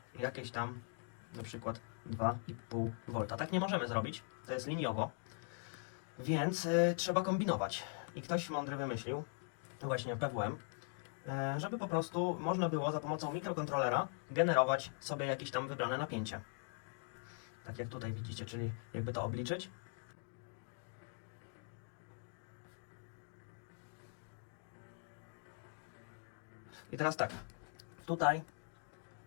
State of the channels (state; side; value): silent; right; 50 dB below the other